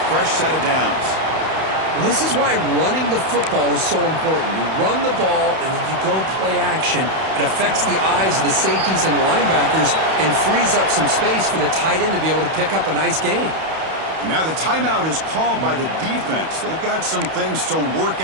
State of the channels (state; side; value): late; left; 31 ms